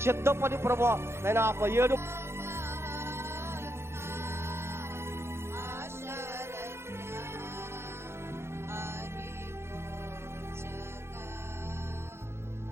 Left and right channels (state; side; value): late; left; 0.12 ms